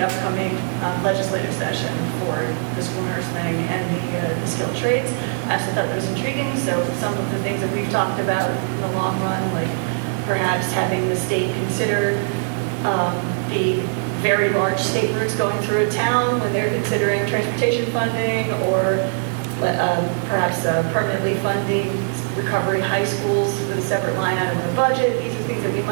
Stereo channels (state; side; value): silent; left; digital silence